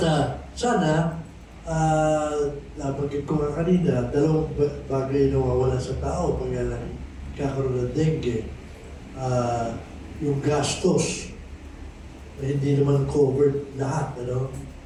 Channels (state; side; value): identical; both; correlation 1.00